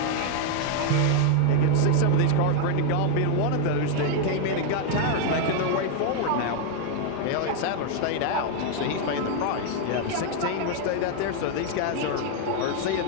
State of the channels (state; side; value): different; both; correlation 0.00